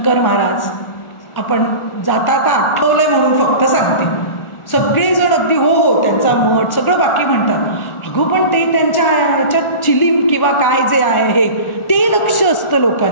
महाराज, आपण जाता आठवलंय म्हणून फक्त सांगते, सगळेजण अगदी हो त्यांचा मठ सगळं बाकी म्हणतात, अगो पण ते त्यांच्या ह्याच्यात चिलीम किंवा काय जे आहे हे ते लक्ष असतं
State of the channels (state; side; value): late; right; 1.4 ms